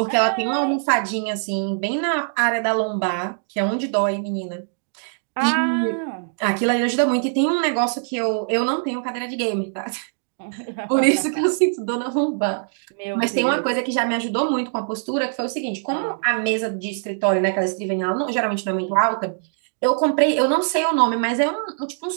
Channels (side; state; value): left; silent; digital silence